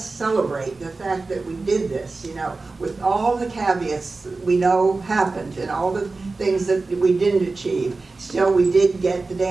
celebrate the fact that we did this, with all the caveats that we know happened and all the things that we didn't achieve. Still, we did get the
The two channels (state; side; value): quieter; left; 3.7 dB